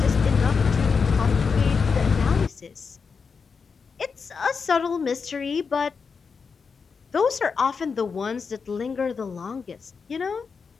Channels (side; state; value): right; quieter; 5.4 dB